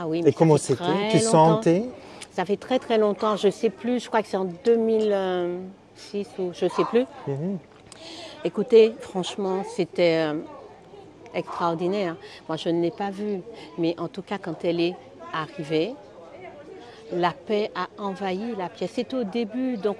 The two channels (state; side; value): identical; both; correlation 1.00